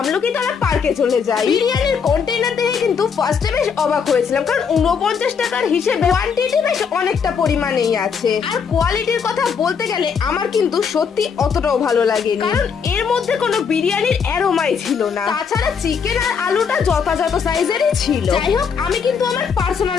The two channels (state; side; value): quieter; right; 6.4 dB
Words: পার্কে চলে যাই। বিরিয়ানির কন্টেইনার দেখে কিন্তু ফার্স্টে বেশ অবাক হয়েছিলাম, কারণ 49 টাকার হিসেবে কোয়ান্টিটি বেশ অনেকটা পরিমাণেই আছে। আর কোয়ালিটির কথা বলতে গেলে আমার কিন্তু সত্যি অতটাও ভালো লাগেনি, কারণ এর মধ্যে কোনো বিরিয়ানির অ্যারোমাই ছিল না। তাছাড়া চিকেন আর আলুটা যথাযথ সাইজেরই ছিল। যাই হোক, আমি কিন্তু আমার পার্সোনাল